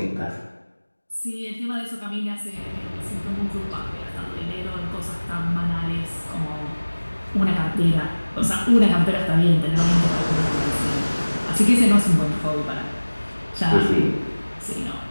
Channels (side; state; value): both; inverted; correlation -1.00